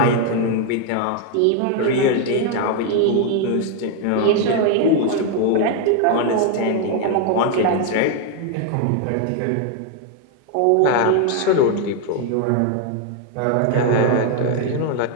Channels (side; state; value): both; different; correlation 0.01